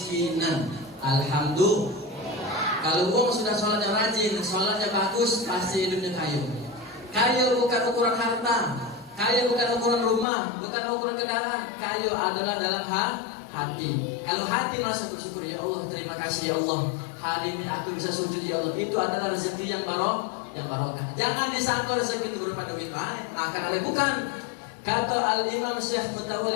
Alhamdulillah. Kalau uang sudah sholatnya rajin, sholatnya bagus, pasti hidupnya kaya. Kaya bukan ukuran harta, kaya bukan ukuran rumah, bukan ukuran kendaraan. Kaya adalah dalam hati. Kalau hati merasa bersyukur, ya Allah, terima kasih ya Allah, hari ini aku bisa sujud ya Allah. Itu adalah rezeki yang barokah. Jangan disangka rezeki itu berupa duit banyak, makan oleh bukan. Kata Al-Imam Syekh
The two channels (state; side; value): drops out; right; at 10.2 s